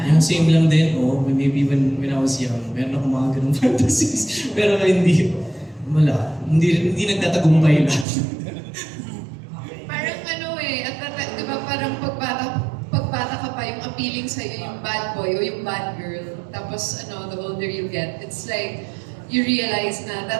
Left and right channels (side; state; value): left; drops out; at 8.1 s